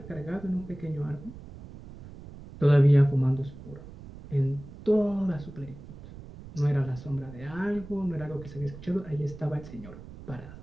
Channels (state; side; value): noise; right; rumble, 15 dB below the sound